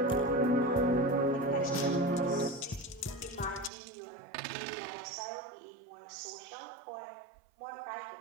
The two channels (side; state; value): left; drops out; at 3.7 s